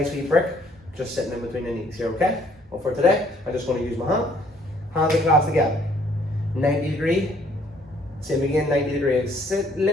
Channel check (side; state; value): both; normal; correlation 0.63